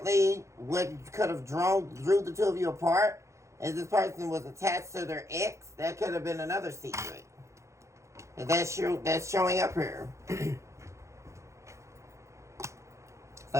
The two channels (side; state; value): left; late; 0.14 ms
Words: what could have drew the two of you apart is this person was attached to their ex. That could have been another secret. That's showing up here.